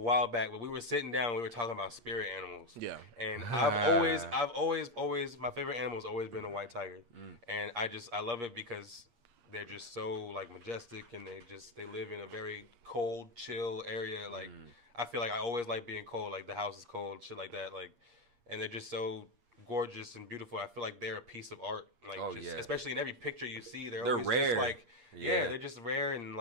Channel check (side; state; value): left; late; 8.5 ms